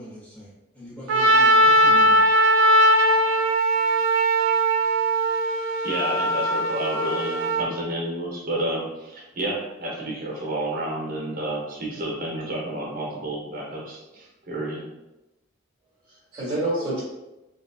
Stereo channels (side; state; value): both; normal; correlation -0.07